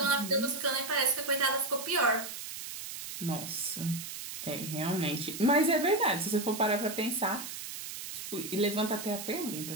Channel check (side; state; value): right; noise; hiss, 8 dB below the sound